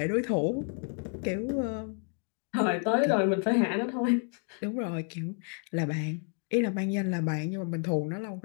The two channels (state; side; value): quieter; right; 37.5 dB